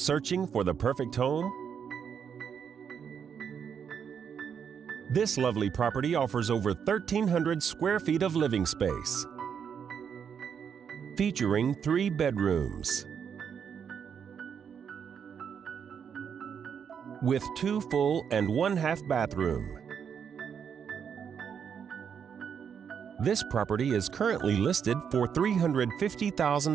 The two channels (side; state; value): left; quieter; 7.4 dB